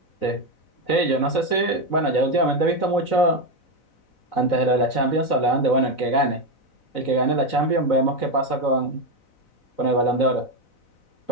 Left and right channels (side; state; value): right; late; 4.0 ms